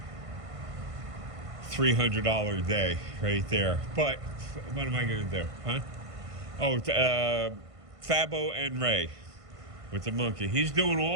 $300 day right there. But what am I going to do, huh? Oh, Fabo and Ray with the monkey. He's doing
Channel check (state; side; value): late; left; 1.5 ms